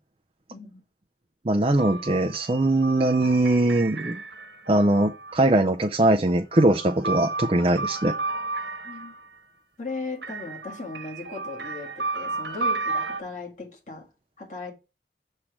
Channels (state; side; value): normal; both; correlation 0.54